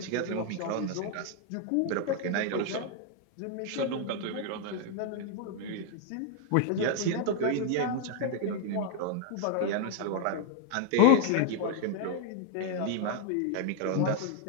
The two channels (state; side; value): different; both; correlation 0.00